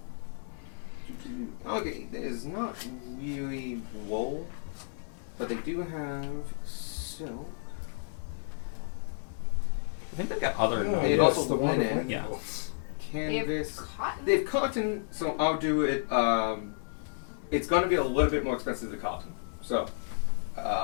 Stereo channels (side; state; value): right; silent; digital silence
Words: Okay, there's not really wool, but they do have silk. I think they've got other. They yes, also the one with linen. lightning Yeah. bolts. They have Canvas. cotton. They have cotton, so I'll do it. It's going to be a little bit more expensive than cotton. So,